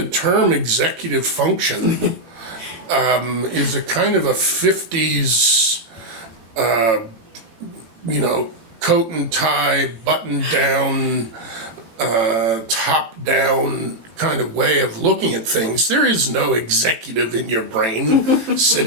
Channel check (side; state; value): left; late; 18 ms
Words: term executive function is a kind of a 50s, coat and tie, button down, top down kind of way of looking at things. There is no executive in your brain